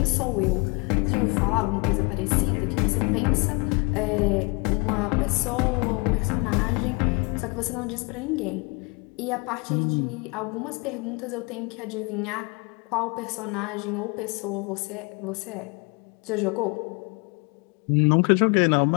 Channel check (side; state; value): right; quieter; 30.1 dB